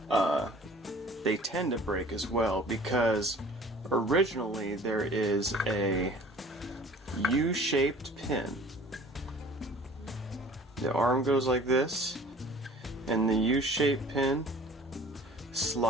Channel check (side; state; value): both; normal; correlation 0.48